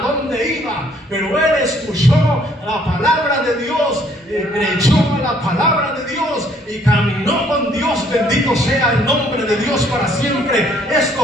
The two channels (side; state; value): both; normal; correlation 0.63